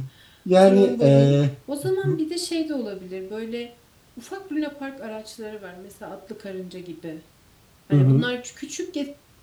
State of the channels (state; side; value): identical; both; correlation 1.00